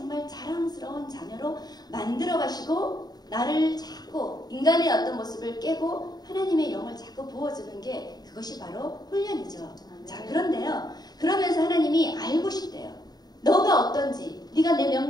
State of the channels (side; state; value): right; late; 0.19 ms